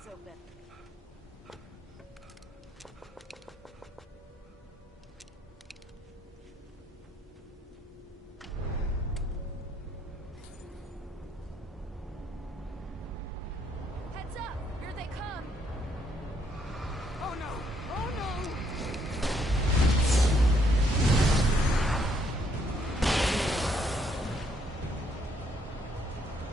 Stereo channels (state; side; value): normal; both; correlation 0.71